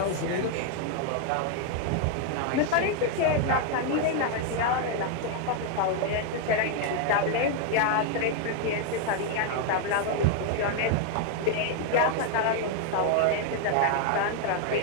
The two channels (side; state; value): both; different; correlation 0.00